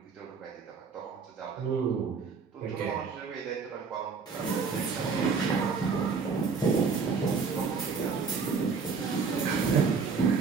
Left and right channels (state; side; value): quieter; left; 5.2 dB